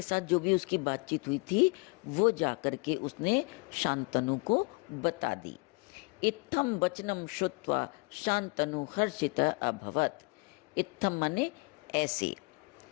साथ जो भी उसकी बातचीत हुई थी वो जाकर के उसने शांतनु को बता दी। इत्थम वचनम श्रुत्वा शांतनु हर्षित अभवत। इत्थम माने ऐसे,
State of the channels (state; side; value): quieter; right; 29.6 dB